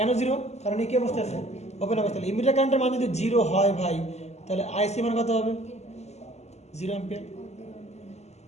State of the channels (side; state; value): right; late; 0.32 ms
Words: জিরো, কারণ এই কি অবস্থা আছে ওপেন অবস্থা। ইমিটার কারেন্টের মান যদি জিরো হয় ভাই, তাহলে আইসি মান কত হবে 0 অ্যাম্পিয়ার,